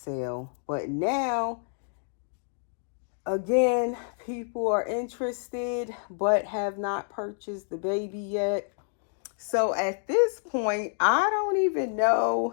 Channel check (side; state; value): right; silent; 59 dB below the other